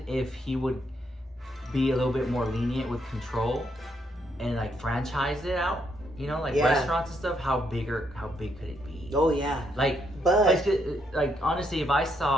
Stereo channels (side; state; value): both; normal; correlation 0.76